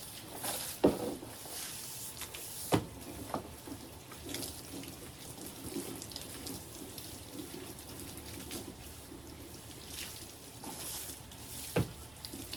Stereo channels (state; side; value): noise; left; rumble, 21 dB below the sound